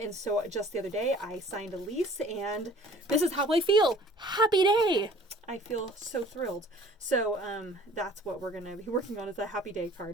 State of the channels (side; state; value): both; normal; correlation 0.51